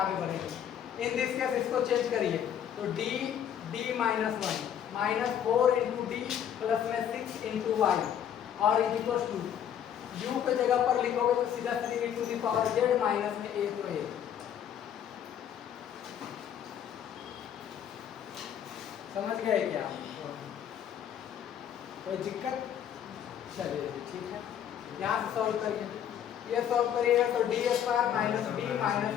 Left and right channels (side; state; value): right; quieter; 9.5 dB